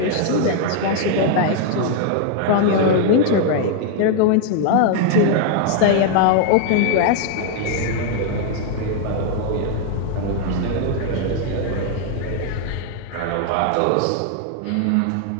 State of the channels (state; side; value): different; both; correlation 0.00